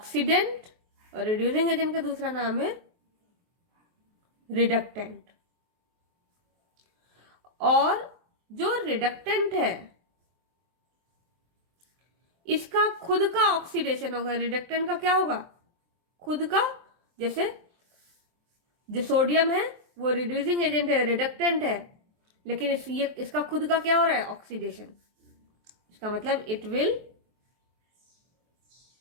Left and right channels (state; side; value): late; left; 23 ms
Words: और रिड्यूसिंग एजेंट का दूसरा नाम है रिडक्टेंट। और जो रिडक्टेंट है इसका खुद का ऑक्सीडेशन होगा। रिडक्टेंट का क्या होगा? खुद का। जैसे जो सोडियम है वो रिड्यूसिंग एजेंट है, रिडक्टेंट है, लेकिन इसका खुद का क्या हो रहा है? ऑक्सीडेशन। इसका मतलब इट विल